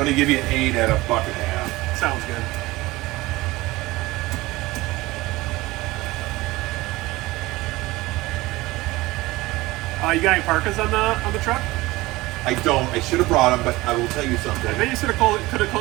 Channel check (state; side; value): quieter; left; 19.8 dB